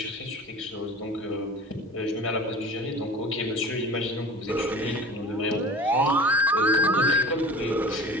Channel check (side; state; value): both; normal; correlation 0.39